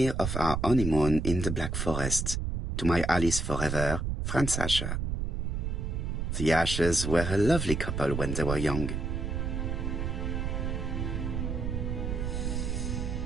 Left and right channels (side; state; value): right; noise; rumble, 2 dB below the sound